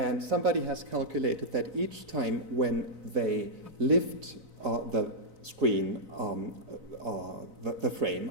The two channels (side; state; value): left; late; 4.0 ms